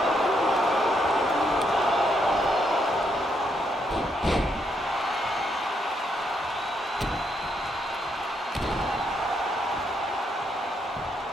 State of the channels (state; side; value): normal; both; correlation 0.76